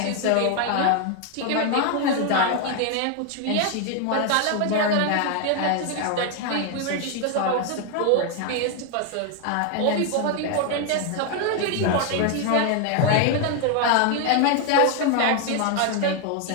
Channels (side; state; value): both; different; correlation 0.01